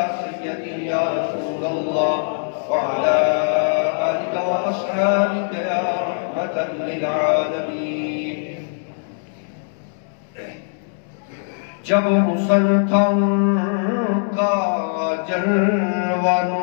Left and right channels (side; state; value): right; silent; 65 dB below the other